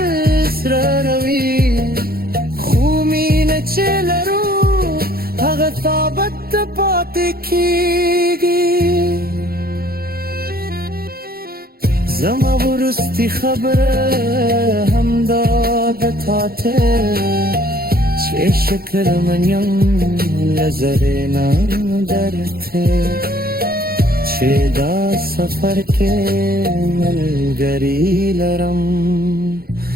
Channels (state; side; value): late; left; 0.44 ms